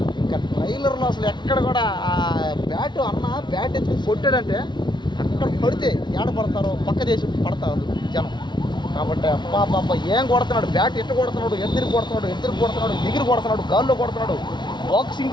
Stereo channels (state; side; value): late; right; 0.22 ms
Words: ఇంకా ట్రైలర్లో అసలు ఎక్కడ కూడా ఆ బ్యాట్ ఎత్తుకు కొట్టాడంటే అక్కడ పడితే ఏడ పడతారో పక్క దేశం పడతారు జనం. కాబట్టి అబ్బా ఏం కొడుతున్నాడు, బ్యాట్ ఎట్టు కొడుతున్నాడు, ఎదురు కొడుతున్నాడు, ఎగిరి కొడుతున్నాడు, గాల్లో కొడుతున్నాడు.